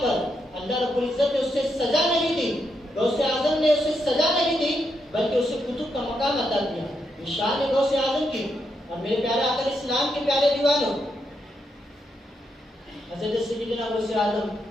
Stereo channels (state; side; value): normal; both; correlation 0.81